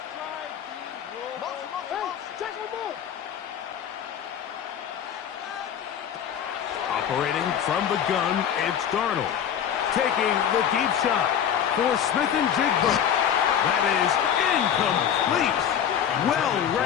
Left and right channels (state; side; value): quieter; right; 9.0 dB